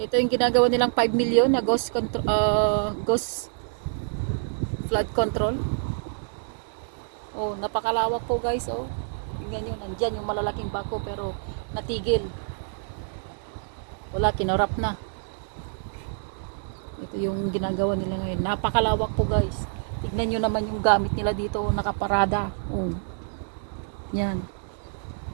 yung ginagawa nilang 5 million na ghost flood control. Oh, napakalawak po guys. Oh, tingnan nyo, nandyan yung malalaking bako pero natigil. Wala, kinurap na. Ito yung ginagawa nila ngayon. Napakalawak po guys. Tignan nyo naman yung gamit nila dito. Nakaparada. Oh. Yan.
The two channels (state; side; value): silent; left; digital silence